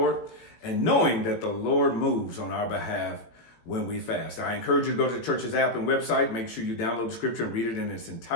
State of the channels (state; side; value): late; right; 18 ms